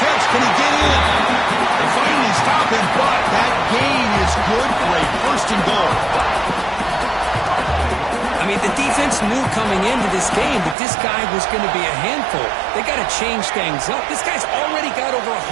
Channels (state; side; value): drops out; left; at 10.8 s